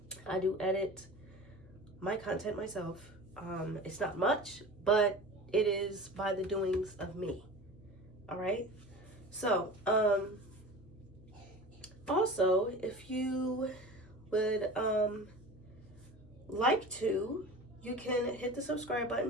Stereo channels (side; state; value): both; normal; correlation 0.36